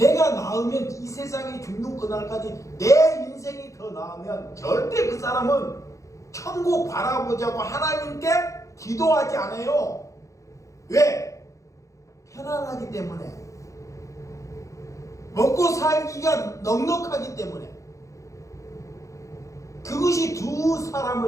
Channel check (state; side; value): late; right; 0.15 ms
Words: 나으면 이 세상이 죽는 그날까지 내 인생이 더 나으면 절대 그 사람은 천국 바라보자고 하나님께 기도하지 않아요. 왜? 편안하기 때문에. 먹고 살기가 넉넉하기 때문에. 그것이 두